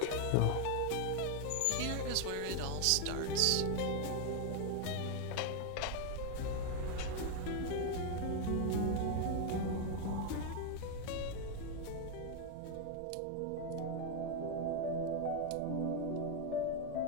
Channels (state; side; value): different; both; correlation 0.01